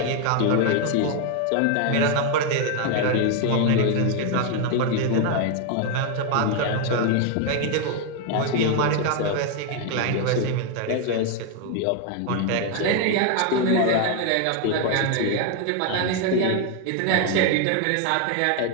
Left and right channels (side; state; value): both; different; correlation 0.01